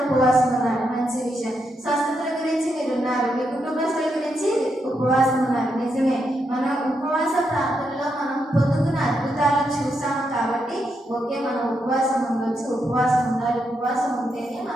ఉపవాసం ఉన్నారు, మంచి విషయం. స్వస్థతల గురించి మీరు ఉన్నారు, మీ కుటుంబస్తుల గురించి ఉపవాసం ఉన్నారు, నిజమే. మన ఉపవాస ప్రార్థనలో మనం పొందుకున్న అద్భుతాలను చూసాము కాబట్టి ఓకే మనం ఉపవాసం ఉండొచ్చు, ఉపవాసం ఉండాలి. ఉపవాసం ఉంటేనే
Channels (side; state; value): both; normal; correlation 0.82